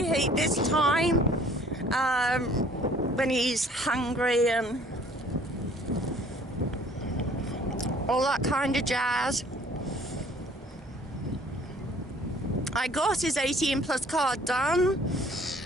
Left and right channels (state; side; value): normal; both; correlation 0.55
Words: this time when he's hungry and all that kind of jazz. I got his 18 plus card done.